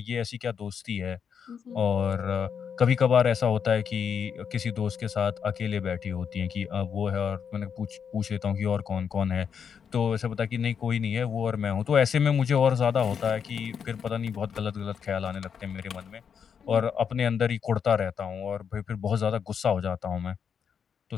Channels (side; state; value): right; quieter; 7.1 dB